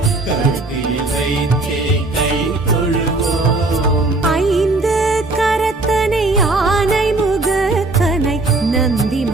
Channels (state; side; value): quieter; left; 3.1 dB